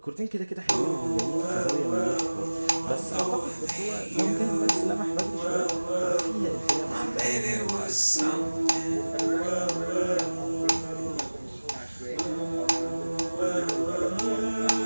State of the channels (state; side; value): inverted; both; correlation -1.00